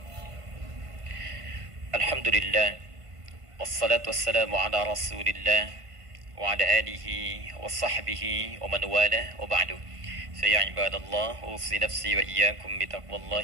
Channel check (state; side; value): late; left; 1.5 ms